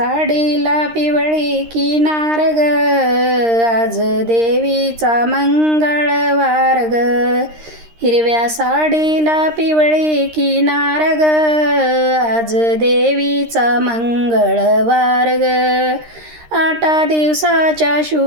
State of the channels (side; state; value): left; late; 13 ms